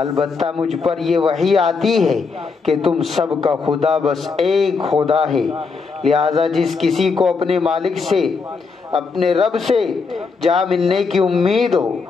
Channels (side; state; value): right; quieter; 4.8 dB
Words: مجھ پر یہ وحی آتی ہے کہ تم سب کا خدا بس ایک خدا ہے، لہذا جس کسی کو اپنے مالک سے، اپنے رب سے جا ملنے کی امید ہو،